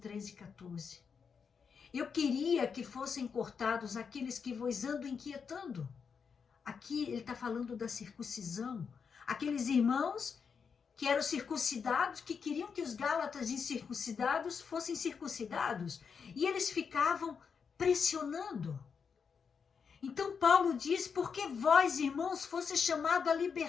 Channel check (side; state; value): right; quieter; 6.1 dB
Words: e 14. Eu queria que fossem cortados aqueles que vos andam inquietando. Aqui ele está falando da circuncisão. Aqueles irmãos que eram circuncidados, que queriam que os gálatas incircuncidados fossem circuncidados. E eles ficavam pressionando. Então Paulo diz, porque vós, irmãos, fosse chamado à